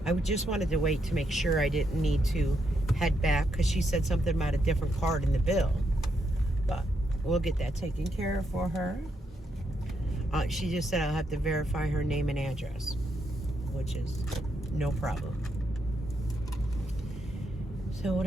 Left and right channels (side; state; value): both; normal; correlation 0.79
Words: I just wanted to wait to make sure I didn't need to head back because she said something about a different card in the bill. But we'll get that taken care of for her. She just said I'll have to verify her name and address, which is no problem. So what